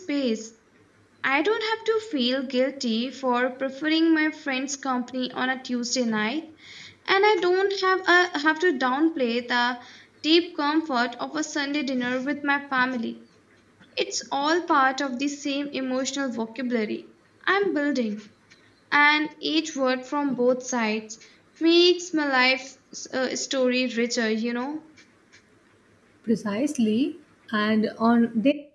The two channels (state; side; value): identical; both; correlation 1.00